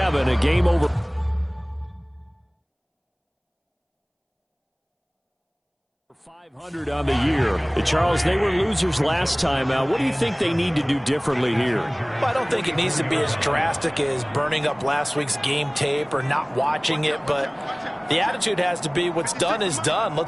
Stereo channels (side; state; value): both; identical; correlation 1.00